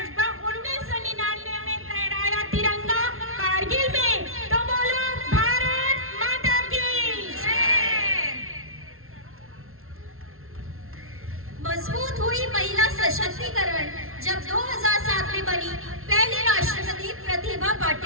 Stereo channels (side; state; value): left; late; 0.62 ms